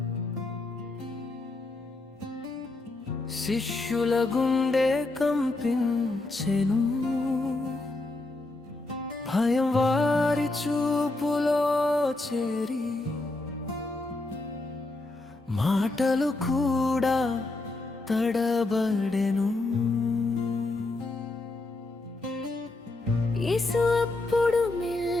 శిష్యుల గుండె కంపించెను. భయం వారి చూపులో చేరి మాటలు కూడా తడబడెను. యేసు అప్పుడు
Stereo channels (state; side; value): quieter; right; 3.0 dB